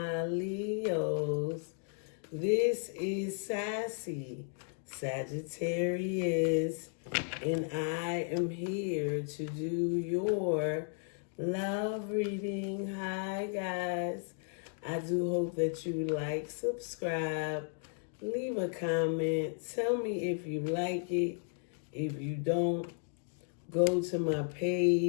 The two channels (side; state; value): right; silent; 55 dB below the other